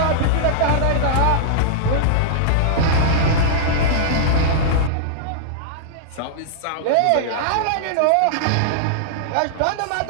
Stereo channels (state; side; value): different; both; correlation -0.02